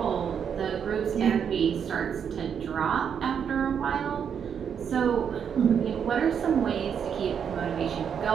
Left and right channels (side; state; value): left; quieter; 7.6 dB